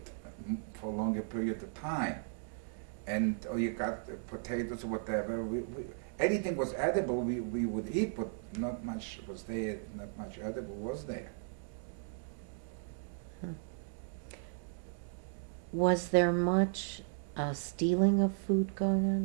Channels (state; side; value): silent; left; digital silence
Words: for a longer period of time. And or you got potatoes or whatever. Anything was edible, we would eat, but not much was there. Not much edible was there. Was there much stealing of food going